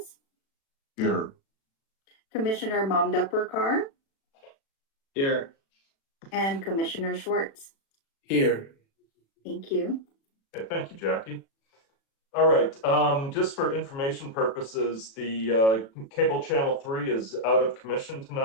Here. Commissioner Mamdapurkar, Here. and Commissioner Schwartz. Here. Thank you. Okay, thank you, Jackie. All right, just for information purposes, the cable channel 3 is out of commission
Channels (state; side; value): late; right; 36 ms